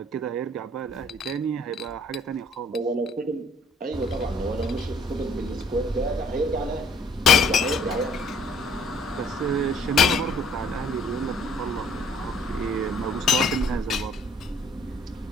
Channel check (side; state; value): both; normal; correlation 0.59